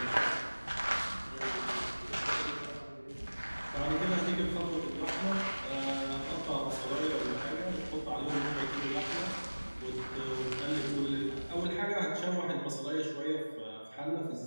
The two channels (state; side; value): inverted; both; correlation -1.00